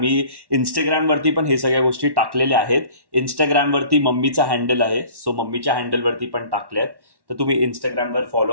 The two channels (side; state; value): left; late; 1.1 ms